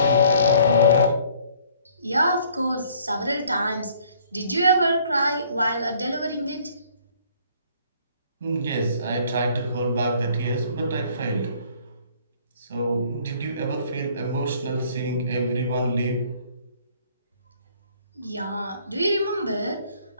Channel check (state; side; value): inverted; both; correlation -0.59